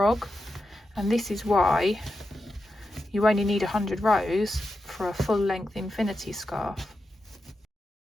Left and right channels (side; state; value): both; normal; correlation 0.89